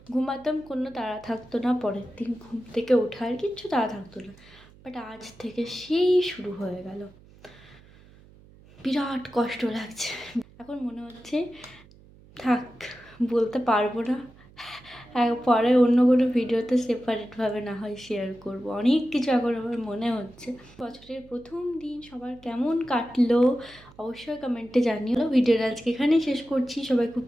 ঘুমাতাম, কোনো তাড়া থাকতো না, পরের দিন ঘুম থেকে ওঠার কিচ্ছু তাড়া থাকতো না। বাট আজ থেকে সেই শুরু হয়ে গেল, বিরাট কষ্ট লাগছে। এখন মনে হচ্ছে থাক, বলতে পারবো না, পরে অন্য কোনো ভিডিওতে সেপারেটভাবে না হয় শেয়ার করব। অনেক কিছু এখন আমার মনে হচ্ছে। বছরের প্রথম দিন সবার কেমন কাটলো অবশ্যই কমেন্টে জানিও। ভিডিওটা আজকে এখানেই শেষ করছি। সবাই খুব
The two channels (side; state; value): right; noise; hum, 24 dB below the sound